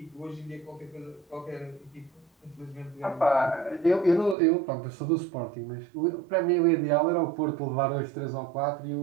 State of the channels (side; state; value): left; drops out; at 4.4 s